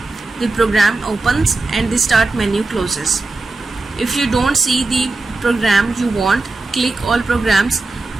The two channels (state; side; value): quieter; left; 3.3 dB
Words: The program opens and the start menu closes. If you don't see the program you want, click all programs.